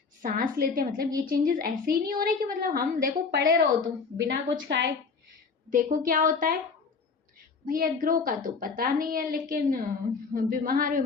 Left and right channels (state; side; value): quieter; right; 5.0 dB